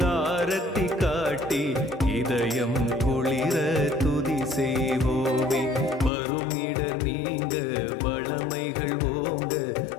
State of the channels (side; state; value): right; drops out; at 6.1 s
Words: ஆரத்தி காட்டி இதயம் குளிர துதி செய்வோமே. வரும் இடர் நீங்க வளமைகள் ஓங்க